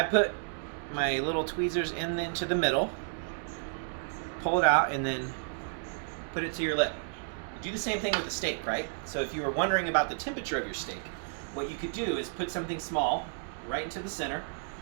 put my little tweezers into the middle, pull it out, and then put it to your lip. Do the same thing with the steak, right? So if you were wondering about the temperature of your steak, what you could do is put something small right into the center,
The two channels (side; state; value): left; silent; digital silence